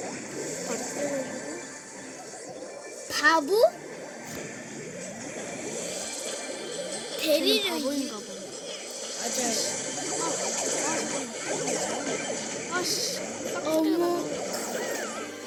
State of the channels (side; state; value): both; identical; correlation 1.00